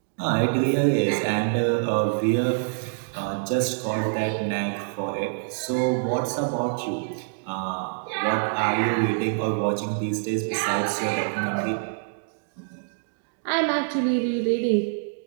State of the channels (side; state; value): left; silent; digital silence